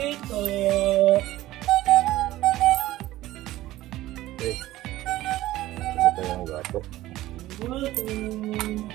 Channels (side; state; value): left; quieter; 16.0 dB